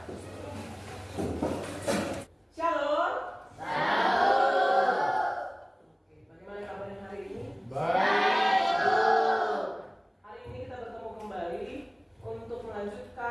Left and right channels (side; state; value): both; identical; correlation 1.00